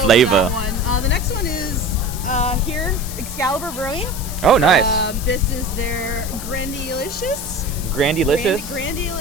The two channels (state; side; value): noise; left; hiss, 10 dB below the sound